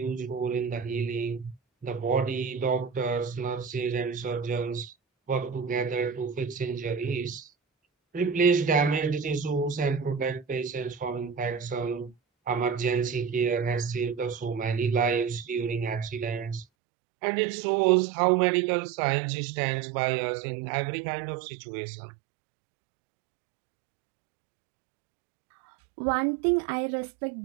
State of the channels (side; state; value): left; drops out; at 16.7 s